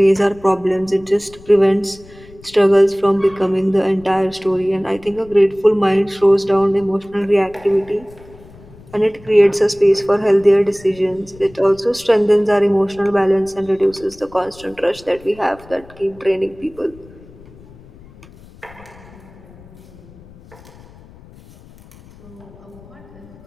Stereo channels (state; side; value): noise; left; rumble, 22 dB below the sound